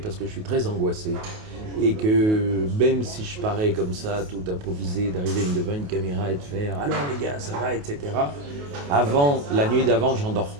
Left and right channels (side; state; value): left; late; 28 ms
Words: que je suis très angoissé. Et que même si je parais comme ça, tout improvisé, d'arriver devant une caméra et de faire « alors les gars, ça va », etc. La nuit d'avant, j'en dors